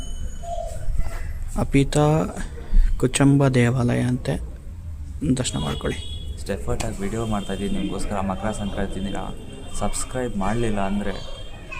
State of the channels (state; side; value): identical; both; correlation 1.00